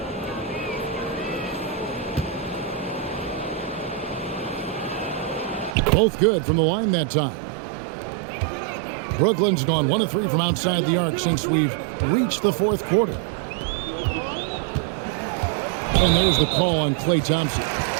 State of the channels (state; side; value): drops out; left; at 5.8 s